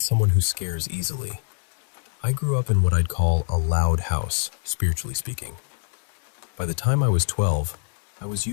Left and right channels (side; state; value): right; silent; digital silence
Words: someone who scares easily. I grew up in what I'd call a loud house, spiritually speaking. By the time I was 12, I was